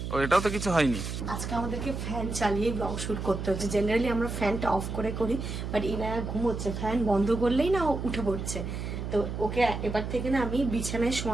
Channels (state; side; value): noise; right; hum, 5 dB below the sound